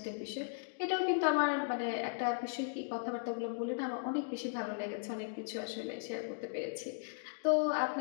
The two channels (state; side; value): silent; right; digital silence